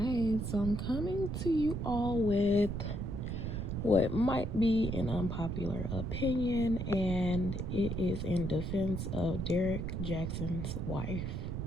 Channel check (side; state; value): right; noise; rumble, 3 dB below the sound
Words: so I'm coming to you all with what might be an unpopular opinion, and it is in defense of Derrick Jaxn's wife.